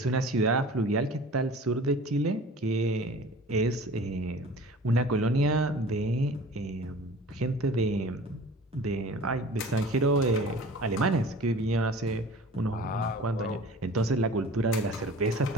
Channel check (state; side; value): normal; both; correlation 0.43